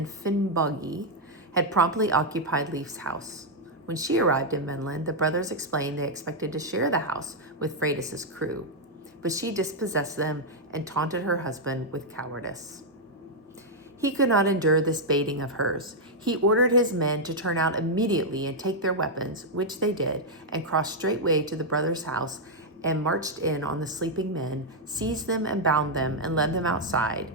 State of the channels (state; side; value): normal; both; correlation -0.02